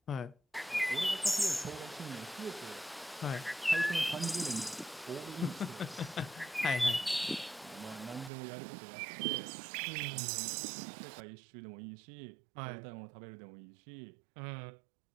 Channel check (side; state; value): left; drops out; at 8.3 s